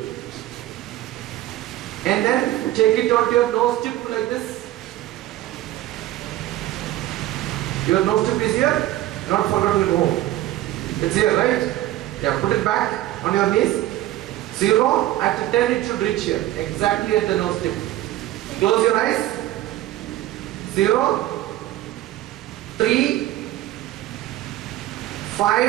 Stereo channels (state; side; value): quieter; left; 14.9 dB